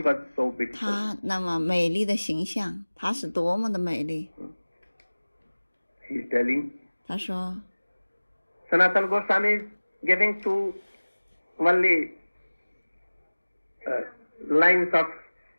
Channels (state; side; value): inverted; both; correlation -1.00